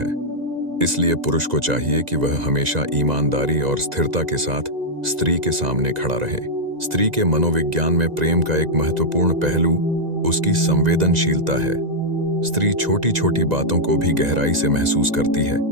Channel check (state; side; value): late; left; 1.9 ms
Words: इसलिए पुरुष को चाहिए कि वह हमेशा ईमानदारी और स्थिरता के साथ स्त्री के सामने खड़ा रहे। स्त्री के मनोविज्ञान में प्रेम का एक महत्वपूर्ण पहलू उसकी संवेदनशीलता है। स्त्री छोटी छोटी बातों को भी गहराई से महसूस करती है।